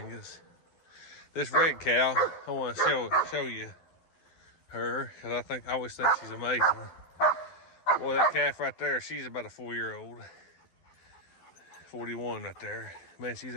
This red cow, I want to show you her, because I always think she's amazing. Boy, that calf right there, she's about a 4-year-old. 41 right there. Man, she's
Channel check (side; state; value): right; late; 12 ms